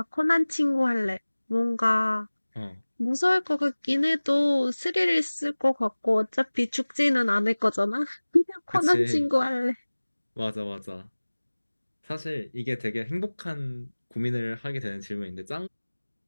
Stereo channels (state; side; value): inverted; both; correlation -1.00